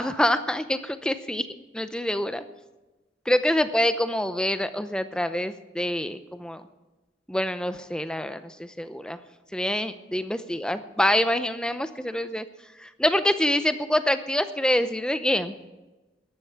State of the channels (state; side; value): normal; both; correlation 0.86